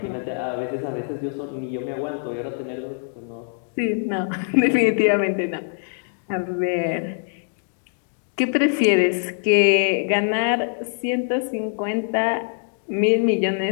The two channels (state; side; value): silent; right; digital silence